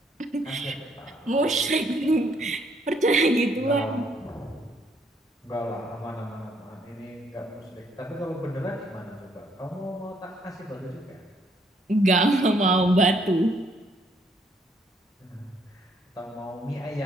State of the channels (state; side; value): normal; both; correlation 0.69